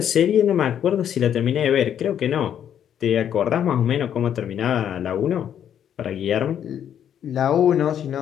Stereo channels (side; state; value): right; quieter; 9.5 dB